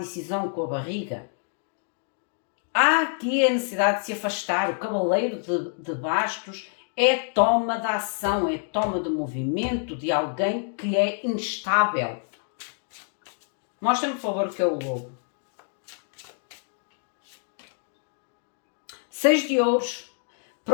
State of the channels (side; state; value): right; silent; 60 dB below the other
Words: com a barriga. Há aqui a necessidade de se afastar. O cavaleiro de bastos é toma de ação, é toma de movimento de alguém que é instável. Mostra-me, por favor, o que é o lobo. 6 de ouros.